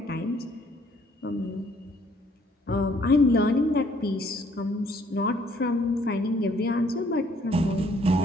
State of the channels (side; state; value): both; normal; correlation 0.64